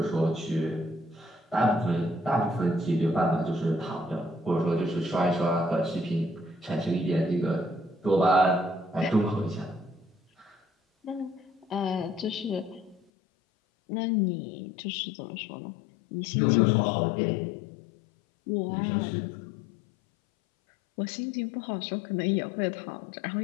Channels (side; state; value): right; drops out; at 13.0 s